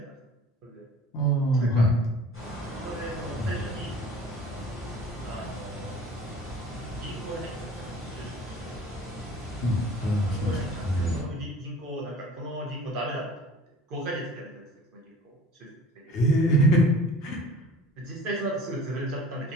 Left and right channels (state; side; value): normal; both; correlation 0.46